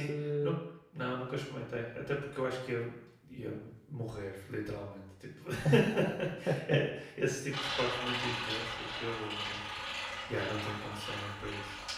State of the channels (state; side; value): identical; both; correlation 1.00